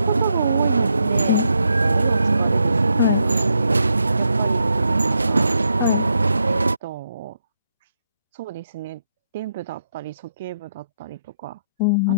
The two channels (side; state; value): both; inverted; correlation -0.80